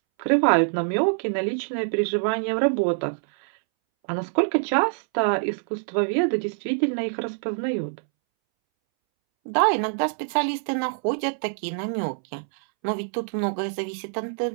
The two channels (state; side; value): silent; left; 62 dB below the other